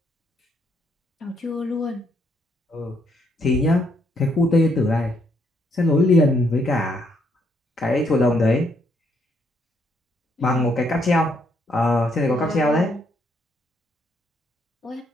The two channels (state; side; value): normal; both; correlation 0.72